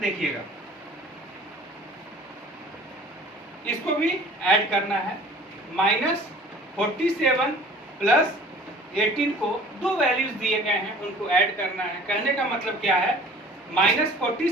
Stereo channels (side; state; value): both; normal; correlation 0.48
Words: इसको भी ऐड करना है। -47 + 18 को दो वैल्यूज दिए गए हैं, उनको ऐड करना है। कहने का मतलब क्या है?